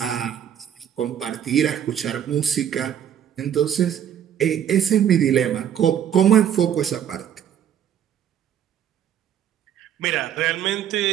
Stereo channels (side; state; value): left; quieter; 9.5 dB